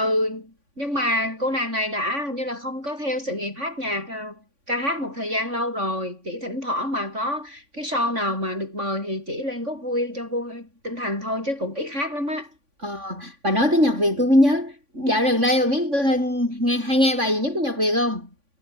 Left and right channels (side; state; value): left; late; 3.5 ms